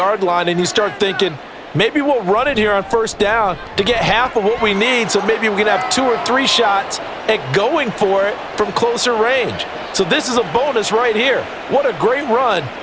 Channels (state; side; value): identical; both; correlation 1.00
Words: line and you start thinking, maybe we'll run it here on 1st down to get half of what we need, so maybe we can have 2 or 3 shots at going for it from closer range. So this is a bonus right here. What a great run